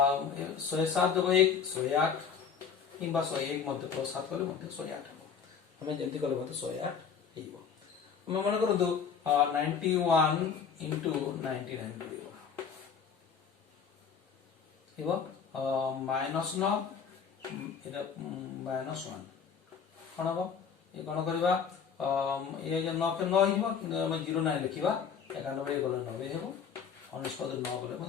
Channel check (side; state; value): right; quieter; 6.6 dB